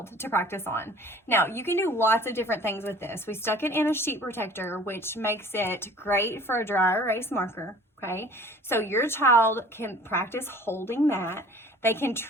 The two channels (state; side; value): normal; both; correlation 0.48